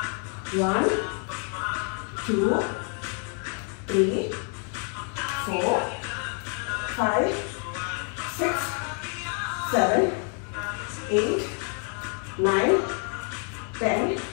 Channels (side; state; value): right; quieter; 39.9 dB